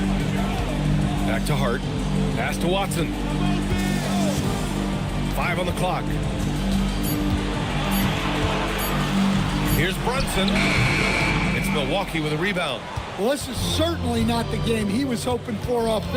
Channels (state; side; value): identical; both; correlation 1.00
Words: Back to Hart. Pass to Watson. 5 on the clock. Here's Brunson. It's Milwaukee with a rebound. Well, this is certainly not the game he was hoping for